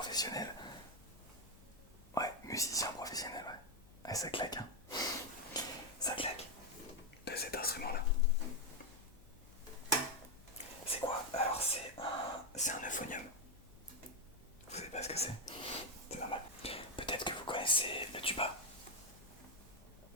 Ouais, musicien professionnel, ouais. Ouais, ça claque, hein. Ça claque. De cet instrument-là. C'est quoi? Alors, c'est un euphonium. Vous savez pas ce que c'est? C'est normal. Peut-être que vous connaissez le tuba.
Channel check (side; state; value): left; noise; hum, 22 dB below the sound